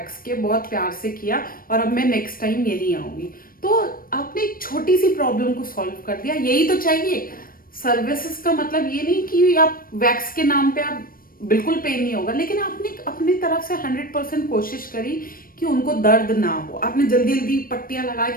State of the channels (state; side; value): late; right; 0.41 ms